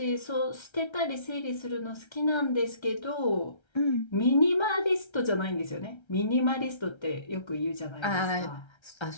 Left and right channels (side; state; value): right; late; 1.3 ms